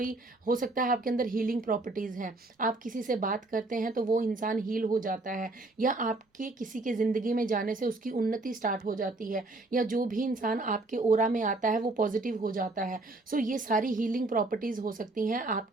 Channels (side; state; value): left; quieter; 3.0 dB